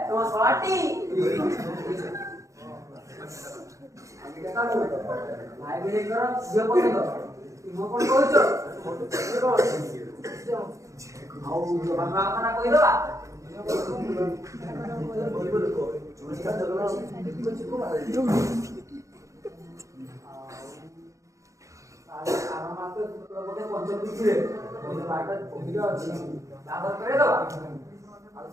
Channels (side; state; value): left; late; 0.15 ms